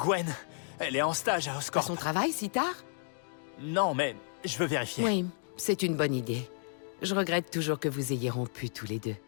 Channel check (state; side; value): silent; right; digital silence